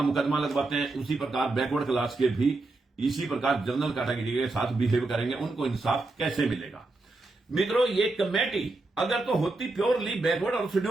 मुकदमा लगवाते हैं, उसी प्रकार बैकवर्ड क्लास के भी इसी प्रकार जनरल कैटेगरी के साथ बिहेव करेंगे। उनको इंसाफ कैसे मिलेगा? मित्रों, ये कमेटी अगर तो होती प्योरली बैकवर्ड और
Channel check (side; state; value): left; quieter; 3.2 dB